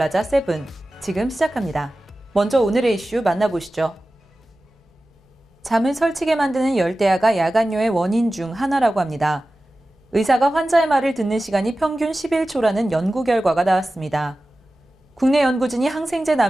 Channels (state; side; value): normal; both; correlation 0.95